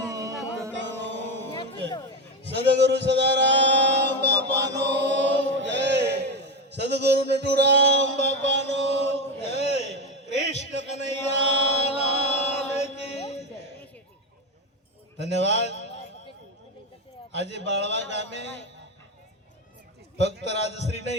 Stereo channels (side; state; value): both; normal; correlation 0.14